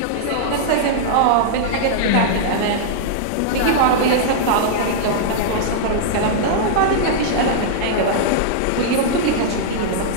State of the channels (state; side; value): different; both; correlation -0.02